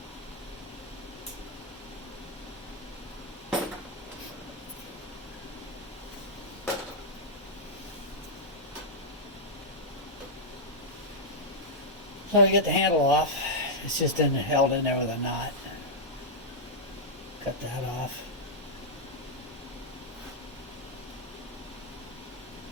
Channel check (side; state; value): both; normal; correlation -0.06